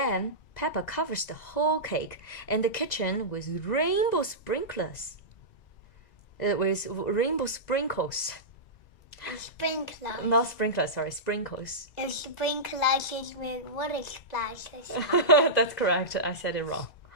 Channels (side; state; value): right; late; 2.4 ms